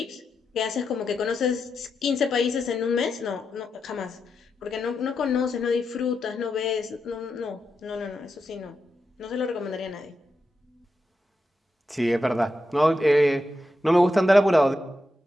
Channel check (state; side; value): normal; both; correlation 0.86